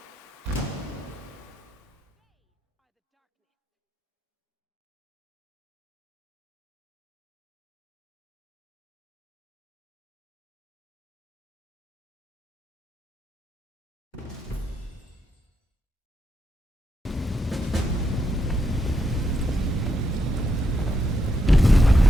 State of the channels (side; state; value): both; normal; correlation 0.82